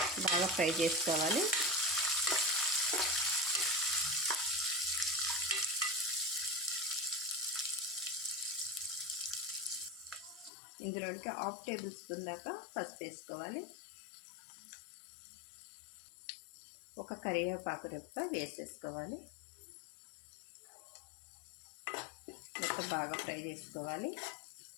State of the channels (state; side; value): drops out; right; at 10.5 s